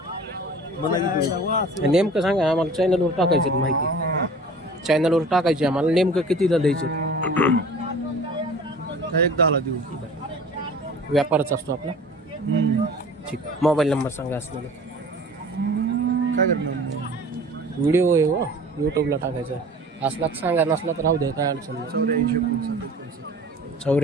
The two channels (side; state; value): both; normal; correlation 0.43